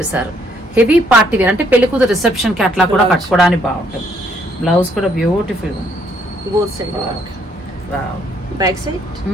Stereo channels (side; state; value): both; normal; correlation 0.68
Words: హెవీ పార్టీ వేర్ అంటే పెళ్లి కూతురు రిసెప్షన్ కి అట్లా కూడా కట్టుకోవడానికి బాగుంటుంది. బ్లౌజ్ కూడా బ్యూటిఫుల్ గా ఉంది.